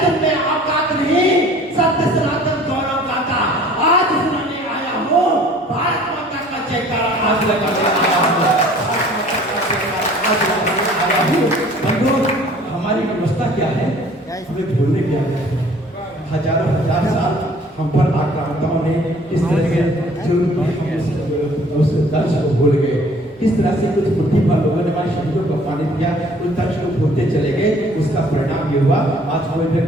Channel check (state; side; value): normal; both; correlation 0.53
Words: हमें भूलने की आदत है। हजारों हजार साल हम पर आक्रांताओं ने किस तरह के उस दर्श को भूल गए, किस तरह से कुछ बुद्धि पर लोगों ने हमारे शब्दों को अपमानित किया, उस दर्श को भूलते चले गए। उसका परिणाम ये हुआ आज कोई